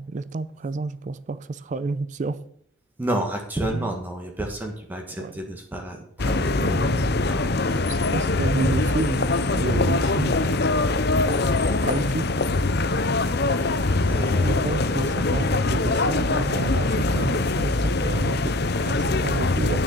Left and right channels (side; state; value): both; normal; correlation 0.42